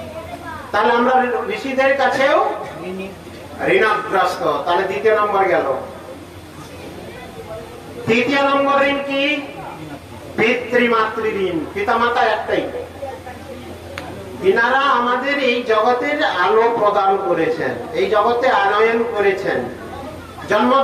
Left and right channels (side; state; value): both; identical; correlation 1.00